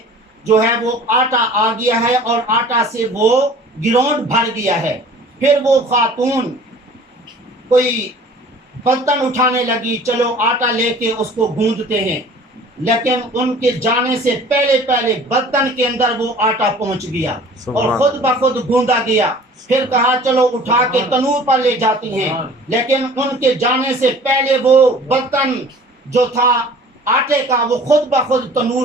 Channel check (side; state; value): both; normal; correlation 0.47